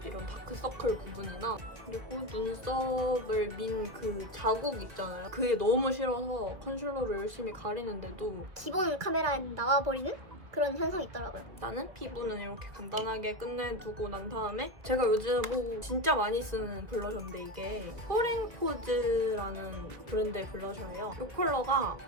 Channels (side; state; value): left; late; 1.8 ms